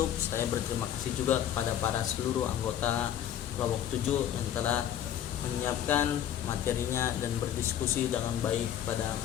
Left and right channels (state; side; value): quieter; right; 10.5 dB